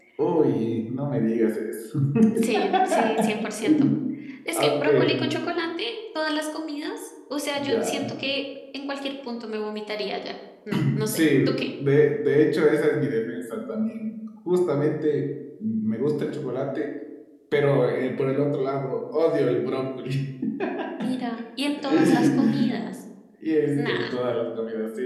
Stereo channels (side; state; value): both; identical; correlation 1.00